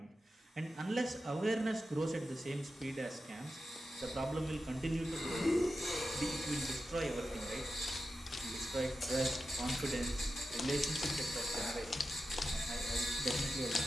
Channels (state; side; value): normal; both; correlation 0.91